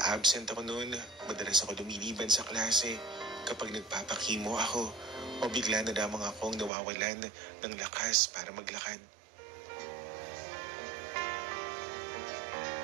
absent ako noon. Madalas ako lumiliban sa klase kapag nagpapakimo ako o bigla na lamang akong nawawalan ng lakas para maglakad.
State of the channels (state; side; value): drops out; left; at 6.7 s